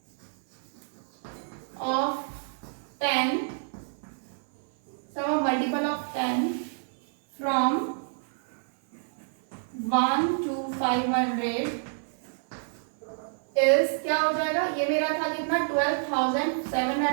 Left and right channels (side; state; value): left; silent; 56 dB below the other